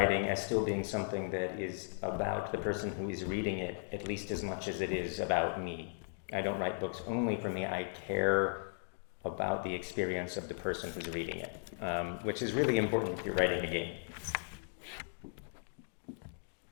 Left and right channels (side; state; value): right; silent; digital silence